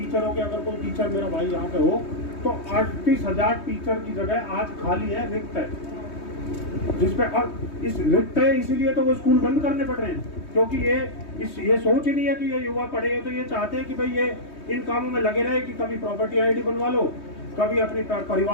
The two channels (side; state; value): right; late; 3.2 ms